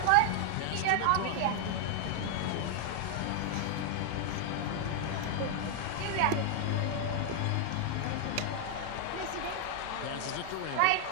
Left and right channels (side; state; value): both; different; correlation 0.00